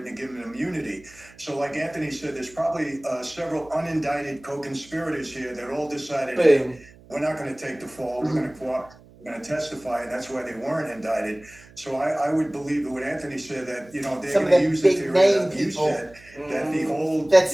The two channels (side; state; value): right; noise; hum, 24 dB below the sound